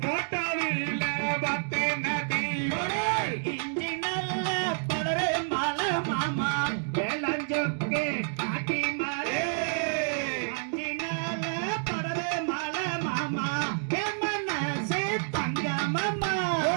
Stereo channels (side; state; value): left; silent; digital silence